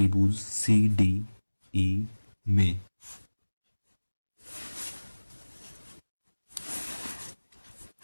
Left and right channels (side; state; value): both; inverted; correlation -1.00